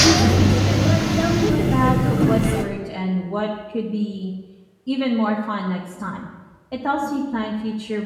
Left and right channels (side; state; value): both; identical; correlation 1.00